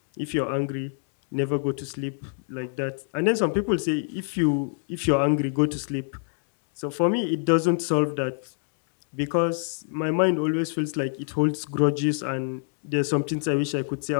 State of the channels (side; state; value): right; silent; 61 dB below the other